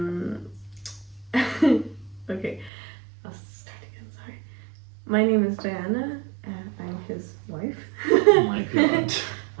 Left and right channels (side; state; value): left; drops out; at 2.7 s